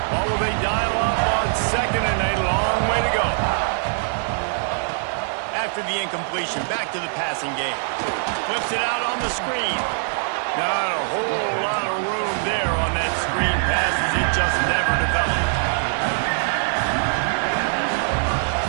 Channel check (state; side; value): silent; left; digital silence